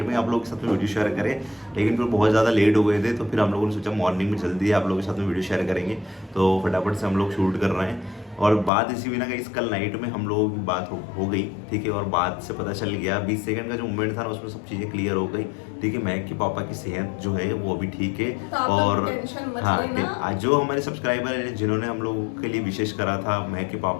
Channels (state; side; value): drops out; right; at 8.7 s